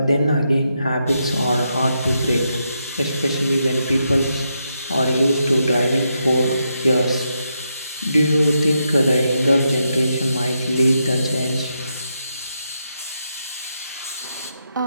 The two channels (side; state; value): both; inverted; correlation -0.82